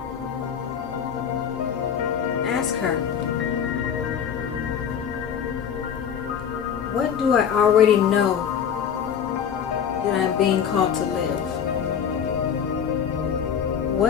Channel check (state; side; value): quieter; right; 8.0 dB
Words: Ask her, what do I already know that I'm being called to live?